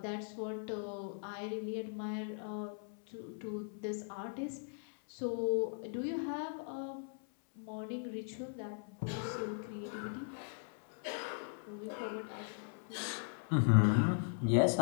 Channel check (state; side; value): silent; right; 52 dB below the other